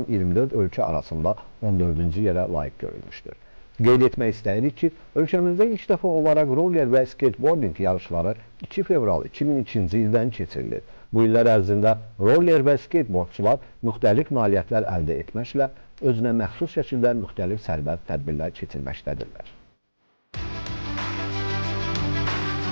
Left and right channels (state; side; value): inverted; both; correlation -1.00